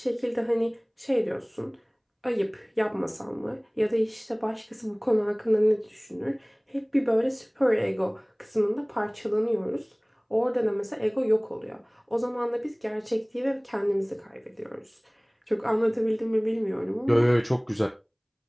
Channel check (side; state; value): both; identical; correlation 1.00